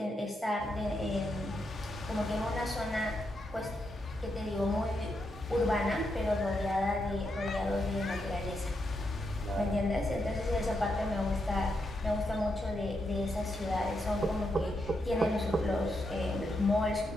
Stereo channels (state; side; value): normal; both; correlation 0.82